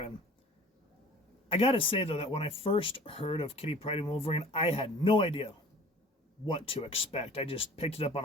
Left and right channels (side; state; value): both; normal; correlation 0.47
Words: I gotta say, though, that when I first heard of Kitty Pryde and Wolverine, I had no idea what to expect. I just picked it up on